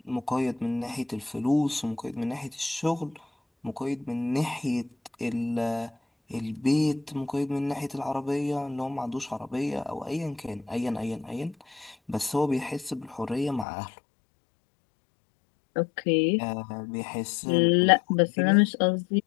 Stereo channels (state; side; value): drops out; right; at 13.7 s